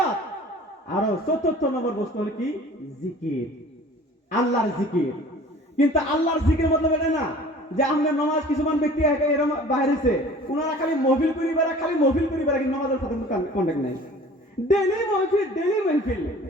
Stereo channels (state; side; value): normal; both; correlation 0.46